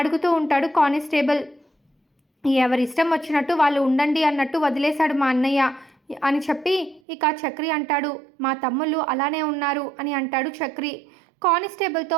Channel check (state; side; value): drops out; left; at 7.0 s